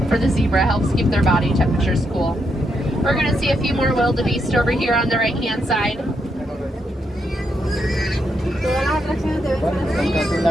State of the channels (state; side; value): normal; both; correlation 0.80